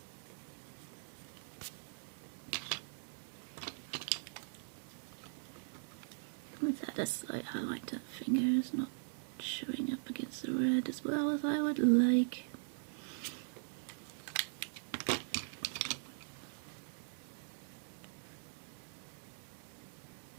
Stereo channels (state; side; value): silent; left; 51 dB below the other